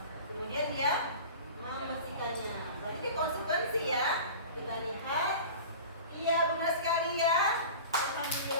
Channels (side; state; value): both; inverted; correlation -0.37